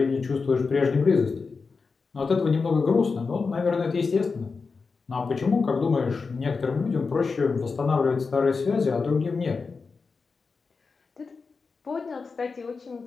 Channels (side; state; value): right; quieter; 4.7 dB